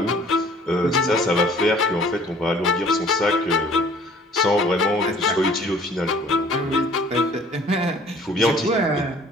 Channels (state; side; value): normal; both; correlation 0.53